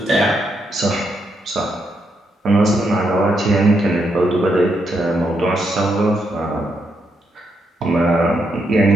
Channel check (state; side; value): normal; both; correlation 0.79